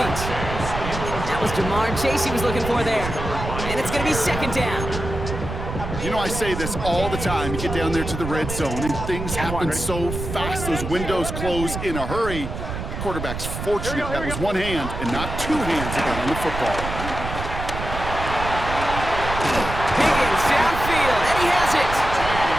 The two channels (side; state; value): right; noise; rumble, 6 dB below the sound